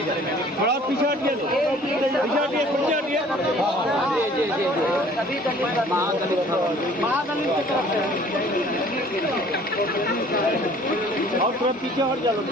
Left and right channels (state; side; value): normal; both; correlation 0.53